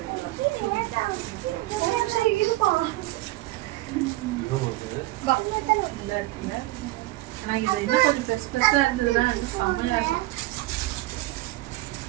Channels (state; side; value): quieter; left; 18.7 dB